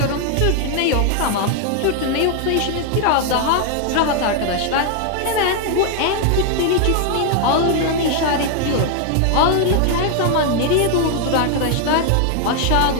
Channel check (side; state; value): both; different; correlation 0.00